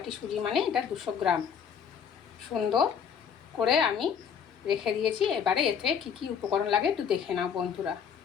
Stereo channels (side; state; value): right; quieter; 7.3 dB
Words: সুজি মানে এটা 200 গ্রাম। সুন্দর করে আমি রেখে দিয়েছি। এবারে এতে কি কি উপকরণ লাগে একটু দেখে নাও বন্ধুরা।